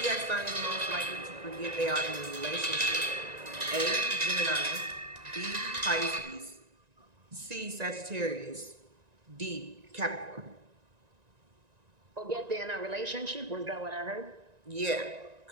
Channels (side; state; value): left; late; 1.9 ms